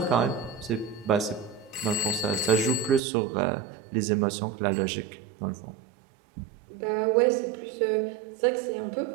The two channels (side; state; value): left; drops out; at 3.0 s